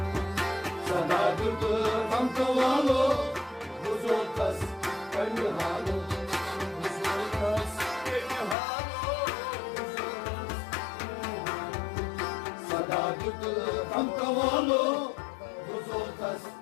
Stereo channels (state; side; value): drops out; right; at 8.6 s